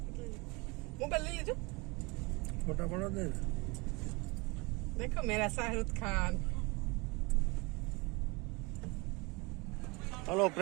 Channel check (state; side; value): quieter; left; 26.7 dB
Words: લઈ લો. મોબાઈલ લઈ લેજો. ફોટા પડો દે. देखो मेरा Shahrukh Khan. Hello